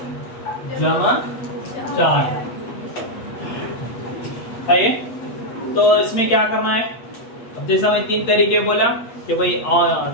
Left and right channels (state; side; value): late; right; 8.5 ms